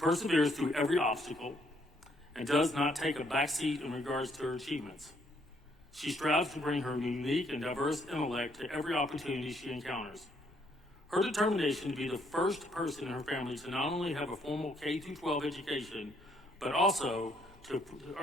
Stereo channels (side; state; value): both; normal; correlation 0.70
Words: through every obstacle and does not take a backseat in regards to her achievements. She strives to bring her unique and diverse intellect to every opportunity she encounters. Her determination to be the first person in her family to not only have a formal K-12 education, but also to